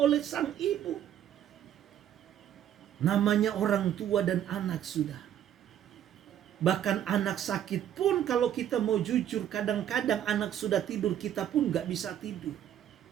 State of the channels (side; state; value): left; quieter; 10.6 dB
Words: sang ibu. Namanya orang tua dan anak sudah. Bahkan anak sakit pun kalau kita mau jujur, kadang-kadang anak sudah tidur, kita pun gak bisa tidur.